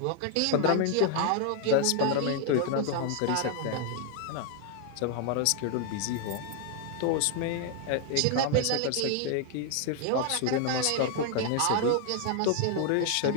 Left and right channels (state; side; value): different; both; correlation 0.00